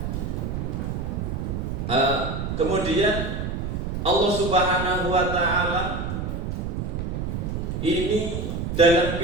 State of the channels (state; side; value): noise; right; rumble, 3 dB below the sound